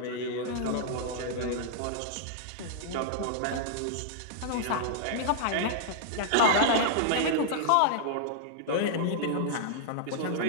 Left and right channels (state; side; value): different; both; correlation -0.01